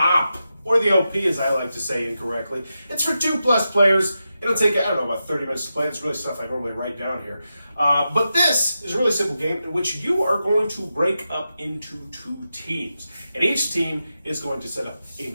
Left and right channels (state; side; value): inverted; both; correlation -0.89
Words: or the OP as I like to say incorrectly. It's for 2+ players. It'll take, I don't know, about 30 minutes to play. It's really stuff I normally write down here. But this is a really simple game in which you are going to break up into 2 teams. And each team is going to set up a